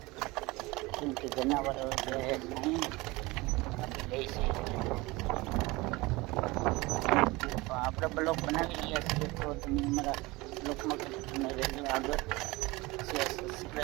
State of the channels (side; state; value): left; quieter; 22.4 dB